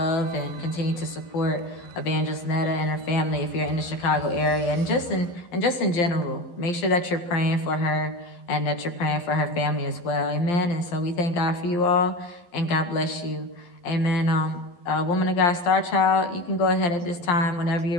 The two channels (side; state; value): right; late; 12 ms